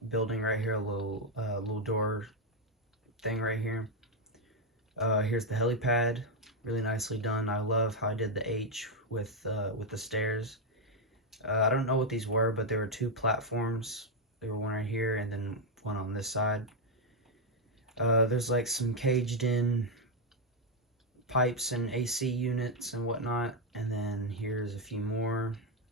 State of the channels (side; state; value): both; normal; correlation 0.01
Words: building right here, a little door thing right here. Here's the helipad, really nicely done. I love how I did the H with the stairs. I don't know what these were, but there were two platforms. There were one right here and then one on this side. There's like some caged in pipes and AC units and whatnot. And then here's a few more.